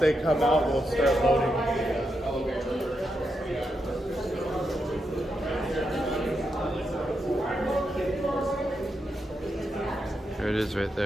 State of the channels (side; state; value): both; normal; correlation 0.84